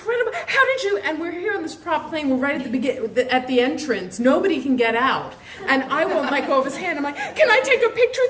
How did you? And we're here on this prop plane. We're right at the entrance. Nobody can get out, and I won't let go of his hand. I'm like, can I take a picture with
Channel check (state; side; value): identical; both; correlation 1.00